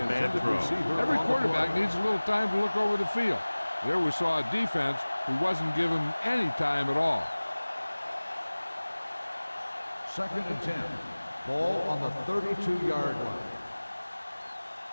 bad throw. Every quarterback needs a little time to look over the field. There we saw a defense who wasn't given any time at all. Second and 10. Ball on the 32-yard line.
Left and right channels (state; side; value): inverted; both; correlation -1.00